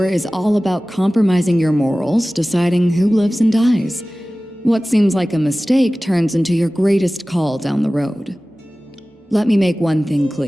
is all about compromising your morals, deciding who lives and dies. What seems like a mistake turns into your greatest call down the road. Let me make one thing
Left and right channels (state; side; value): normal; both; correlation 0.97